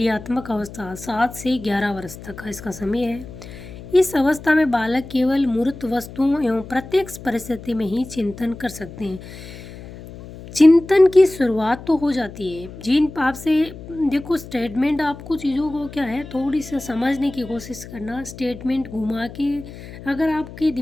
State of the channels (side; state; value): left; noise; hum, 15 dB below the sound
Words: अवस्था 7 से 11 वर्ष तक का इसका समय है। इस अवस्था में बालक केवल मूर्त वस्तुओं एवं प्रत्यक्ष परिस्थिति में ही चिंतन कर सकते हैं। चिंतन की शुरुआत तो हो जाती है। जीन आपसे देखो स्टेटमेंट, आपको चीज़ों को क्या है थोड़ी सी समझने की कोशिश करना। स्टेटमेंट घुमा के अगर आपके